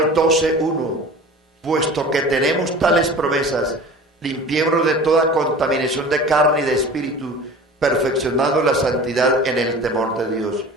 12:1: puesto que tenemos tales promesas, limpiémonos de toda contaminación de carne y de espíritu, perfeccionando la santidad en el temor de Dios.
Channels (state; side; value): normal; both; correlation 0.39